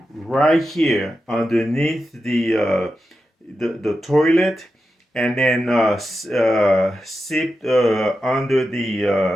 right here underneath the toilet, and then sipped under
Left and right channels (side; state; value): both; normal; correlation 0.90